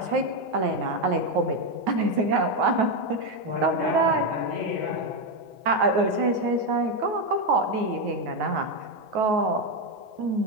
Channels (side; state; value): left; late; 9.3 ms